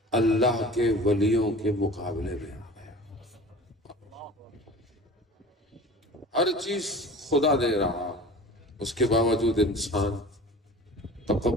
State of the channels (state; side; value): normal; both; correlation 0.40